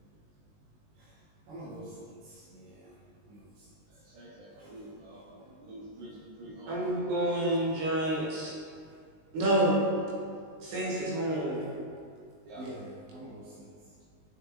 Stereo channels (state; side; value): late; left; 19 ms